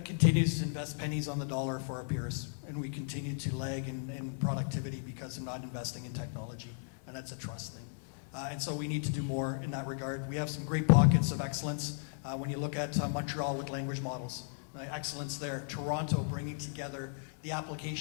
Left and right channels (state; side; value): silent; right; digital silence